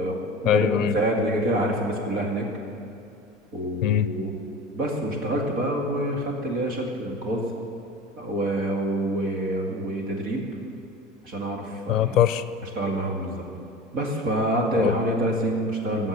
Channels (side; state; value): both; normal; correlation 0.35